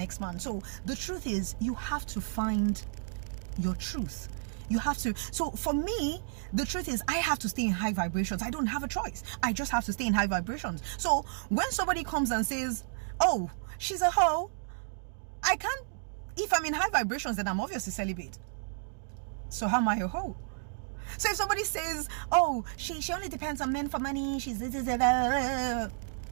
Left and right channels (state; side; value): silent; left; digital silence